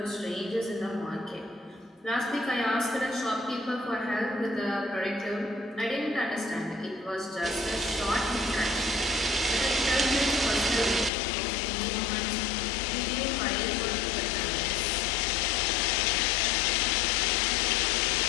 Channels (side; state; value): right; drops out; at 11.1 s